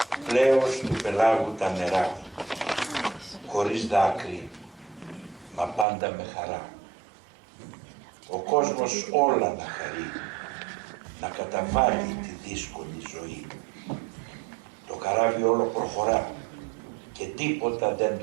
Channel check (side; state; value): left; drops out; at 5.9 s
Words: Πλέος του πελάγου τα νερά, χωρίς δάκρυ, μα πάντα με χαρά. Ο κόσμος όλα να χαρεί, να καταβάλει τη δύσκολη ζωή. Το καράβι όλο προχωρά και τίποτα δεν